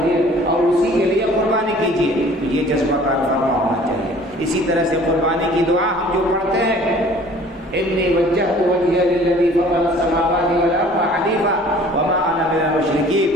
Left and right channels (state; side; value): normal; both; correlation 0.51